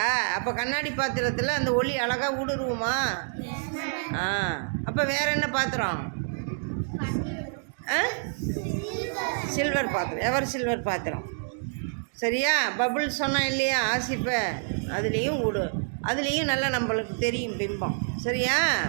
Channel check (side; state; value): left; silent; digital silence